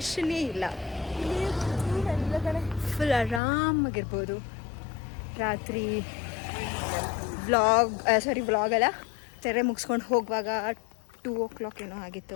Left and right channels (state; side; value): drops out; right; at 3.4 s